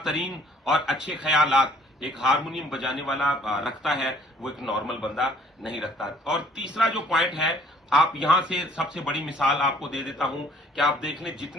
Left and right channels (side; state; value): both; normal; correlation 0.57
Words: और अच्छे ख्यालात एक हारमोनियम बजाने वाला रखता है, वो एक नॉर्मल बंदा नहीं रखता। और तीसरा जो पॉइंट है, आप यहां से सबसे बड़ी मिसाल आपको दे देता हूं कि आप देख लें